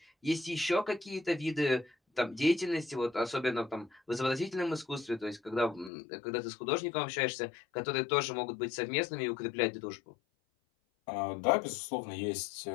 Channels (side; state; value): right; drops out; at 5.9 s